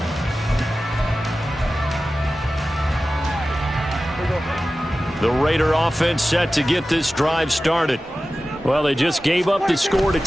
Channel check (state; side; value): normal; both; correlation 0.95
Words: The Raider offense set to get this drive started. Well, they just gave up the score to